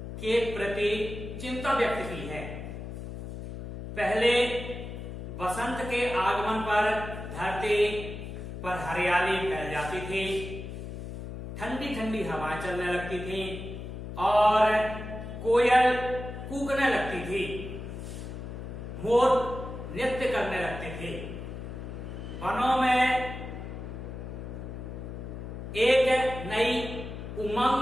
के प्रति चिंता व्यक्त की है। पहले बसंत के आगमन पर धरती पर हरियाली फैल जाती थी, ठंडी ठंडी हवाएं चलने लगती थी और कोयल कूकने लगती थी, मोर नृत्य करने लगते थे। वनों में एक नई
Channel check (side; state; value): left; noise; hum, 8 dB below the sound